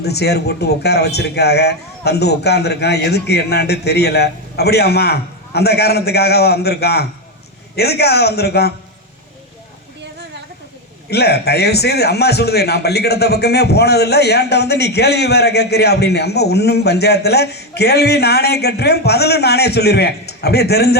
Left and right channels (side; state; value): both; normal; correlation 0.09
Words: சேர் போட்டு உட்கார வச்சிருக்காக, வந்து உட்கார்ந்துருக்கான், எதுக்கு என்னான்னு தெரியல. அப்படியாம்மா? அந்த காரணத்துக்காக வந்திருக்கான்? எதுக்காக வந்திருக்கான்? இல்லை, தயவு செய்து அம்மா சொல்லுது, நான் பள்ளிக்கூடத்தை பக்கமே போனதில்லை, ஏன்ட்ட வந்து நீ கேள்வி வேற கேட்குறியா அப்படின்னு. அம்மா ஒன்றும் பஞ்சாயத்தில் கேள்வி நானே கேட்டுருவேன், பதிலும் நானே சொல்லிடுவேன். அப்படியே